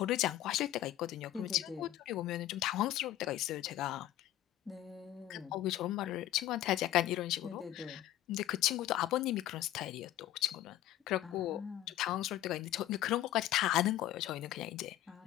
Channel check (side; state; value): right; quieter; 13.6 dB